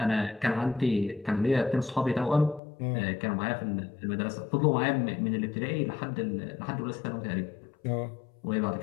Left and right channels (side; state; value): right; drops out; at 2.6 s